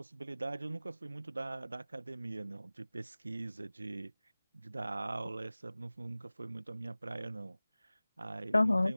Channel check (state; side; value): inverted; both; correlation -0.98